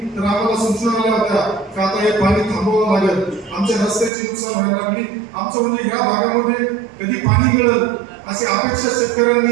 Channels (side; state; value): left; drops out; at 4.1 s